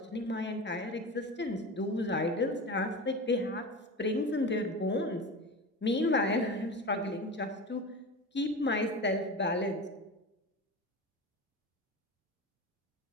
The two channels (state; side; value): normal; both; correlation 0.28